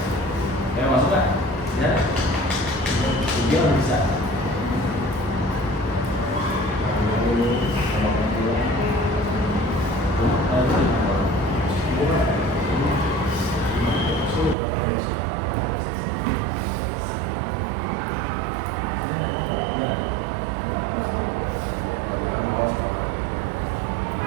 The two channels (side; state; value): left; drops out; at 14.6 s